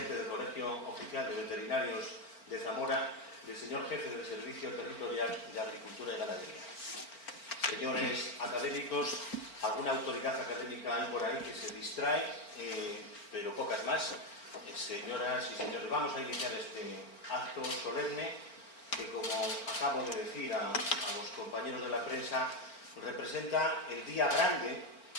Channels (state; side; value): late; right; 4.4 ms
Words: del Colegio Oficial de Veterinarios de Zamora y el señor jefe del Servicio Territorial de Agricultura y Ganadería. Señores académicos, alguna autoridad académica hay por ahí que se distrae, pero pocas más. Señoras y señores, vamos a iniciar este acto solemne que, como acabo de decir a los compañeros de la prensa, representa el día grande